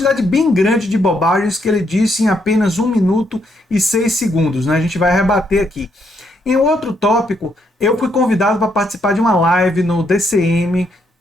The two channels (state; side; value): normal; both; correlation 0.75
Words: bem grande de bobagens que ele disse em apenas 1 minuto e 6 segundos, né? A gente vai rebater aqui. Em outro tópico, eu fui convidado para participar de uma live no DCM.